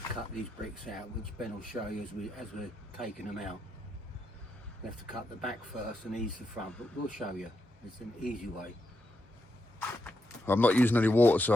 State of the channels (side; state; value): both; normal; correlation 0.84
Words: to cut these bricks out, which Ben will show you as we're taking them out. We have to cut the back first and ease the front, but we'll show you. It's an easy way. I'm not using any water, so